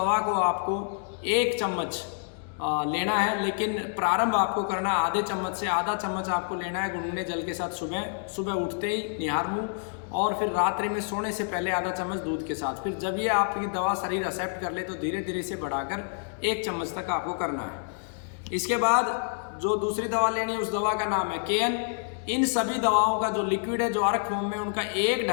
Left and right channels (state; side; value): silent; right; digital silence